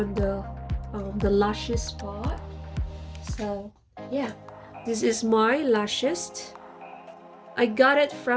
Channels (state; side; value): identical; both; correlation 1.00